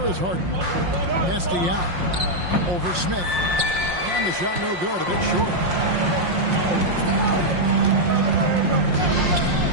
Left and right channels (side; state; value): left; late; 5.6 ms